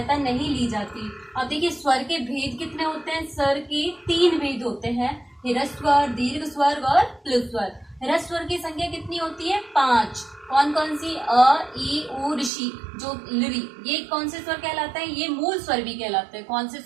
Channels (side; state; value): left; drops out; at 12.5 s